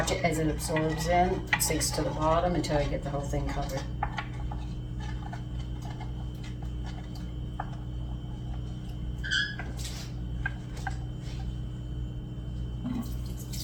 it as it absorbs in, sinks to the bottom until I get the whole thing covered.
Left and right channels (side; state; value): both; identical; correlation 1.00